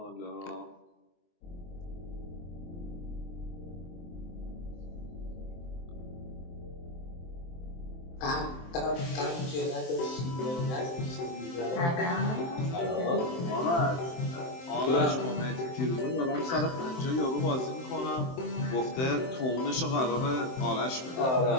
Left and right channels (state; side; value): late; right; 23 ms